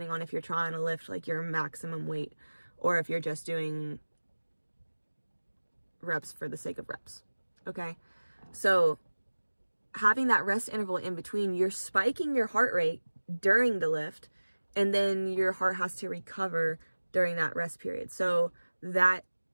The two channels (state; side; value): inverted; both; correlation -1.00